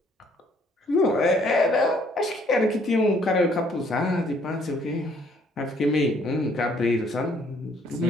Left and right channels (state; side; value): normal; both; correlation 0.64